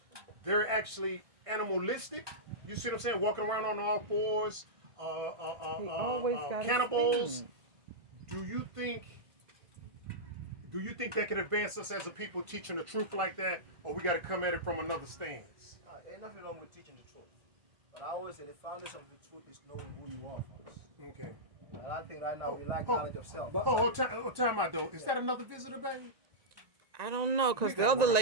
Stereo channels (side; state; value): left; late; 1.6 ms